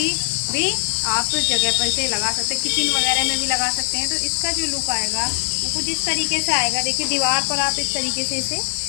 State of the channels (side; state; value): right; silent; 62 dB below the other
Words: भी आप जगह पर इसे लगा सकते हैं। किचन वगैरह में भी लगा सकते हैं। तो इसका जो लुक आएगा वो कुछ इस तरीके से आएगा। देखिए दीवार पर आप इस तरीके से इसे